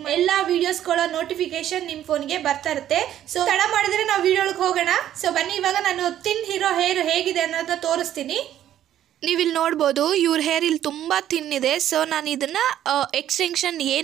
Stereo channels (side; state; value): left; quieter; 11.5 dB